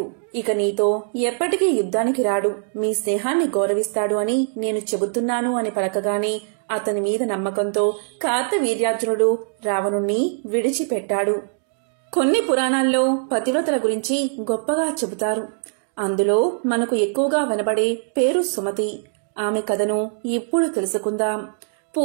ఇక నీతో ఎప్పటికీ యుద్ధానికి రాడు. మీ స్నేహాన్ని గౌరవిస్తాడు అని నేను చెబుతున్నాను అని పలకగానే అతని మీద నమ్మకంతో కార్తవీర్యార్జునుడు రావణుణ్ణి విడిచిపెట్టాడు. కొన్ని పురాణాల్లో పతివ్రతల గురించి గొప్పగా చెబుతారు. అందులో మనకు ఎక్కువగా వినబడే పేరు సుమతి. ఆమె కథను ఇప్పుడు తెలుసుకుందాం.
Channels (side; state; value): left; silent; digital silence